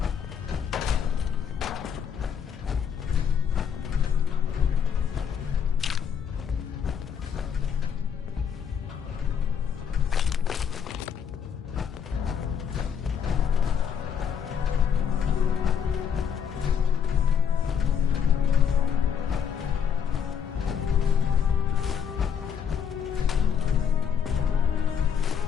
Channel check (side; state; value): right; quieter; 7.6 dB